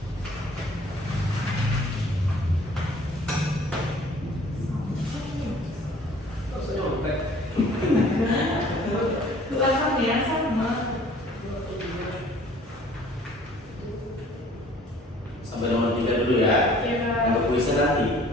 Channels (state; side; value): normal; both; correlation 0.53